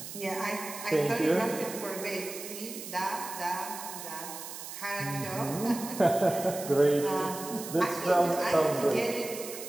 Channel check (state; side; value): noise; right; hiss, 10 dB below the sound